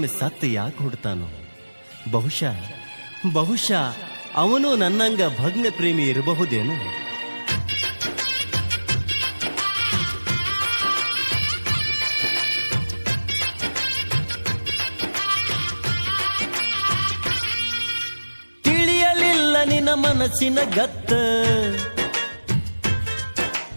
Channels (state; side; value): inverted; both; correlation -1.00